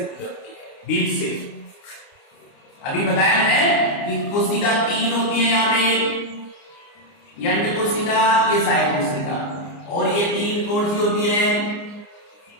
है, बीच से। अभी बताया मैंने कि कोशिका 3 होती है यहाँ पे, ये अंड कोशिका, ये सायक कोशिका, और ये 3 कौन सी होती है?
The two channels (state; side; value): late; right; 29 ms